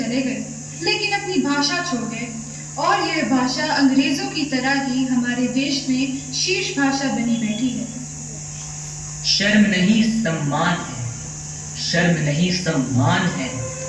गए, लेकिन अपनी भाषा छोड़ गए, और यह भाषा अंग्रेजों की तरह ही हमारे देश में शीर्ष भाषा बनी बैठी है। शर्म नहीं सम्मान है, शर्म नहीं सम्मान है,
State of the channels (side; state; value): both; identical; correlation 1.00